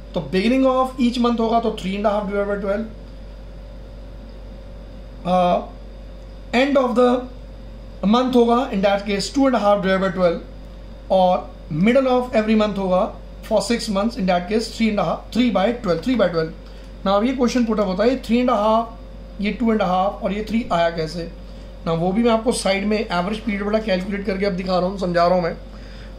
तो बिगिनिंग ऑफ ईच मंथ होगा तो 3.5 divide by 12, end of the month होगा in that case 2.5 divide by 12, और मिडल ऑफ एवरी मंथ होगा for 6 months in that case 3/12। ना अब ये क्वेश्चन पुट अप होता है 3.5, ये 2.5 और ये 3 आया कैसे ना, वो भी मैं आपको साइड में एवरेज पीरियड वाला कैलकुलेट करके अब दिखा रहा हूँ, समझा रहा हूँ मैं।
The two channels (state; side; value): identical; both; correlation 1.00